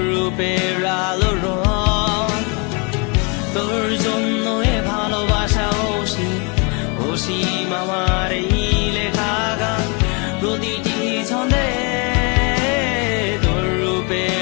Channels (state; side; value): quieter; right; 33.3 dB